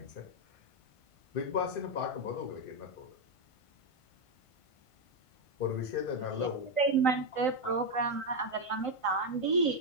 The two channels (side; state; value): right; late; 1.5 ms